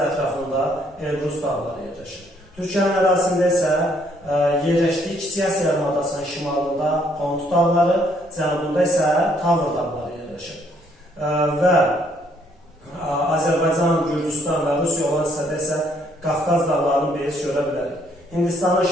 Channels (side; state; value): both; normal; correlation 0.67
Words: ətrafında Elbrus dağları yerləşir. Türkiyənin ərazisində isə yerləşdiyi Kiçik Asiya yarımadasının şimalında Pont dağları, cənubunda isə Tavr dağları yerləşir. Və Azərbaycan, Gürcüstan və Rusiya olan hissədə isə Qafqaz dağlarını biz görə bilərik. Hindistanın